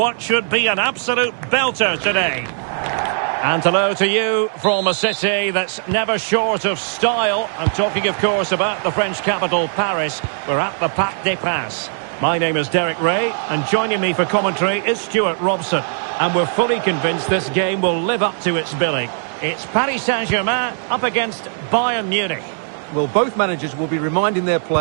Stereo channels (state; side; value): silent; left; 66 dB below the other